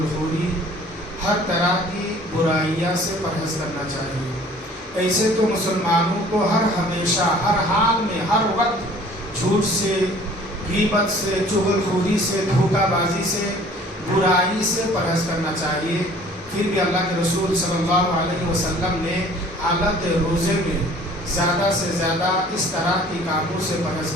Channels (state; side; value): normal; both; correlation 0.51